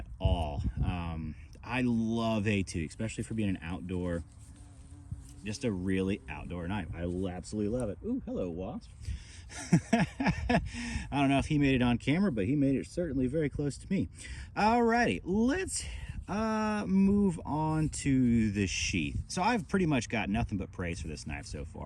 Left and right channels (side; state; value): both; identical; correlation 1.00